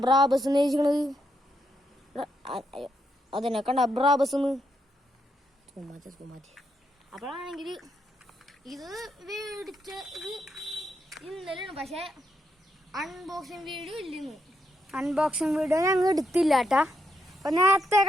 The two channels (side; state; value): both; normal; correlation 0.79